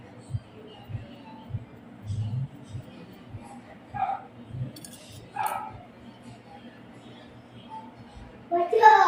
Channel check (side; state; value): both; identical; correlation 1.00